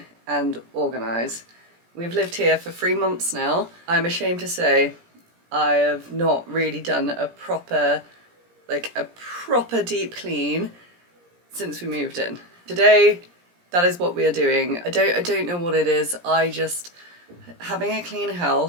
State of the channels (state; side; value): late; left; 17 ms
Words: and organise. We've lived here for 3 months now. I'm ashamed to say I have not really done a proper deep clean since we moved in. Today, that is what we are doing. I don't know what it is. Having a clean